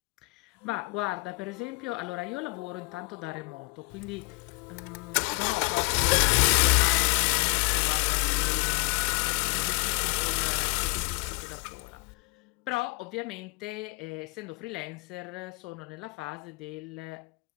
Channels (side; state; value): right; quieter; 29.5 dB